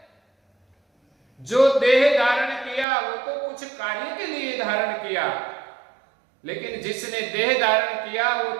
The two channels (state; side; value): drops out; left; at 2.9 s